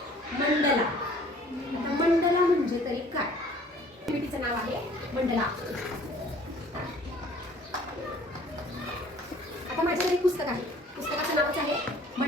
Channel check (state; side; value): normal; both; correlation 0.53